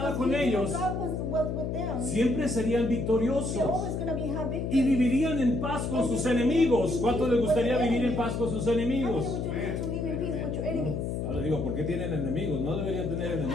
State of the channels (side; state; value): left; noise; hum, 2 dB below the sound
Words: Because con he knew ellos, God was with them. siempre serían They're victoriosos always going to be have y victory. vivirían en paz con sus enemigos. ¿Cuánto les gustaría vivir en paz con sus How many enemigos? would you need to live in peace with your enemies? Ahora digo, ¿por qué tienen enemigos? No deberían tener